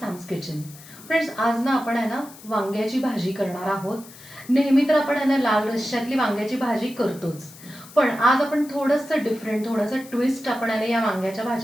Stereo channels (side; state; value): left; noise; hiss, 19 dB below the sound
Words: kitchen. Friends, आज ना आपण आहे ना वांग्याची भाजी करणार आहोत. नेहमी तर आपण आहे ना लाल रश्श्यातली वांग्याची भाजी करतोच, पण आज आपण थोडंसं डिफरंट, थोडंसं ट्विस्ट आपण आहे ना या वांग्याच्या